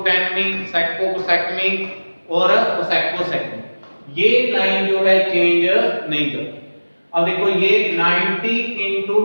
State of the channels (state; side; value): inverted; both; correlation -1.00